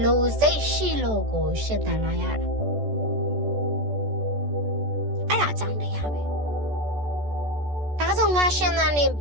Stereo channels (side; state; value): left; late; 14 ms